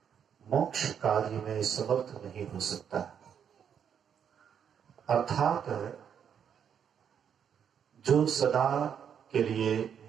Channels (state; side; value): quieter; left; 8.1 dB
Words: मोक्ष कार्य में समर्थ नहीं हो सकता। अर्थात जो सदा के लिए